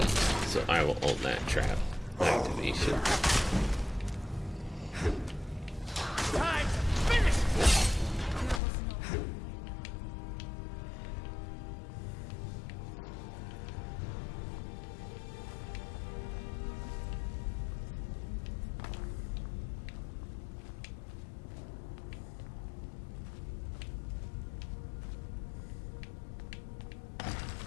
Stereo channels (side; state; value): right; drops out; at 8.6 s